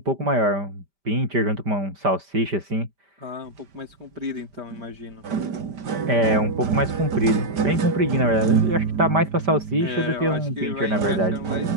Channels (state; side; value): late; left; 5.0 ms